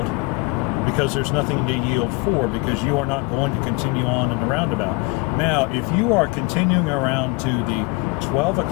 because there's nothing to yield for, because you are not going to continue on in the roundabout. Now, if you are continuing around to the 12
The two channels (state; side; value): quieter; right; 25.9 dB